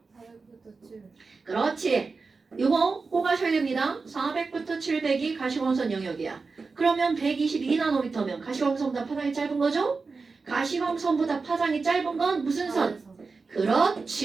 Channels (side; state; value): left; quieter; 4.4 dB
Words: 400부터 700. 그렇지. 이거 꼭 아셔야 됩니다. 400부터 700이 가시광선 영역이야. 그러면 122나노미터면 가시광선보다 파장이 짧은 거죠? 가시광선보다 파장이 짧은 건 무슨 선?